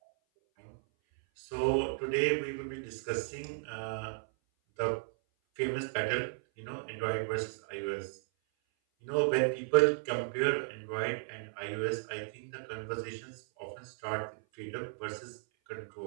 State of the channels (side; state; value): left; silent; 54 dB below the other